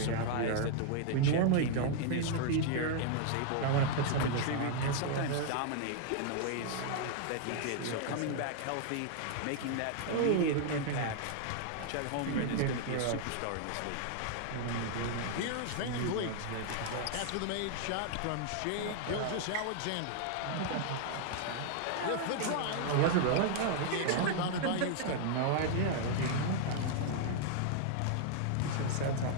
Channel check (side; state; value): both; different; correlation 0.00